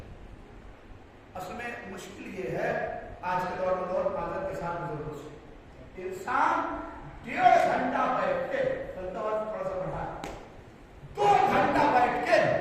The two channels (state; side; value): identical; both; correlation 1.00